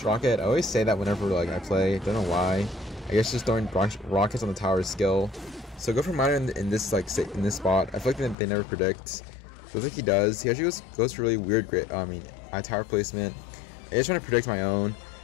rocket. I always say that whenever like I play. Don't know why. I guess just throwing rockets on the tower is skill. So go for miner in this like in this spot. I feel like they never predict. So I think he does. He actually goes for really weird I Tower placement. I just trying to predict my own,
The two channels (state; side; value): drops out; right; at 8.3 s